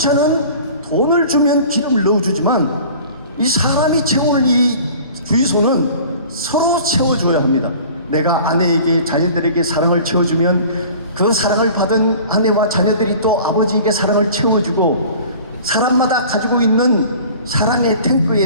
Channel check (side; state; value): both; inverted; correlation -0.45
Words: 돈을 주면 기름을 넣어주지만 이 사람이 채울 이 주유소는 서로 채워줘야 합니다. 내가 아내에게, 자녀들에게 사랑을 채워주면 그 사랑을 받은 아내와 자녀들이 또 아버지에게 사랑을 채워주고, 사람마다 가지고 있는 사랑의